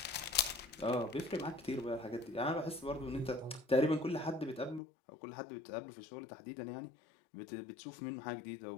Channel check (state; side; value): drops out; right; at 4.8 s